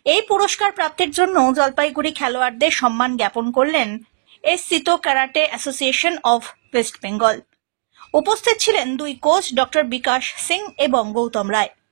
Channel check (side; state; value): left; silent; digital silence